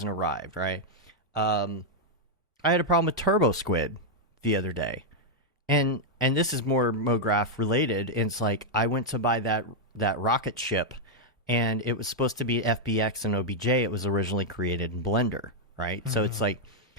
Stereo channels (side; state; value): both; normal; correlation -0.02